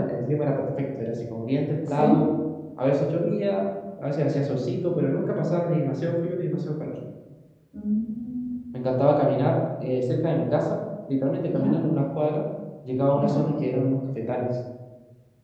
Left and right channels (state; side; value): identical; both; correlation 1.00